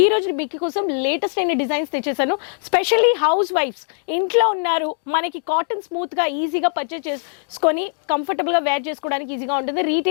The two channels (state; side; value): silent; right; digital silence